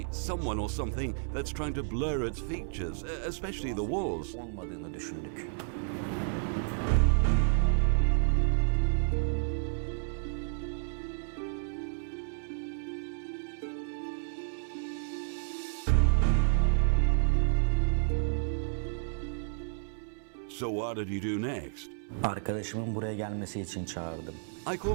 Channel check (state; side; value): silent; left; 57 dB below the other